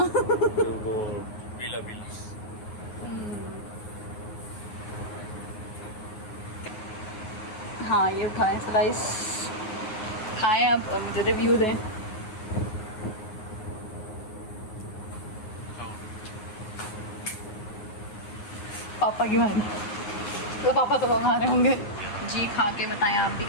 वो पीला पीला। हाँ ये उठाएं स्लाइस, खाएं अब और मुझे रिव्यू दें। पापा की मारी तो पापा तो हमारे होंगे जी। खा के बताएं आप भी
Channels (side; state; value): right; late; 9.5 ms